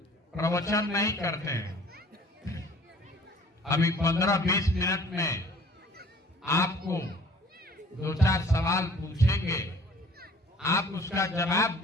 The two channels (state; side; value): normal; both; correlation 0.52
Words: प्रवचन नहीं करते हैं। अभी 15-20 मिनट में आपको 2-4 सवाल पूछेंगे, आप उसका जवाब